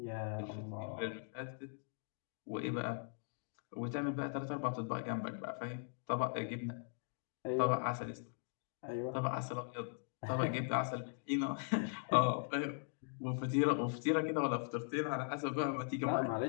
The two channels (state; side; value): silent; right; digital silence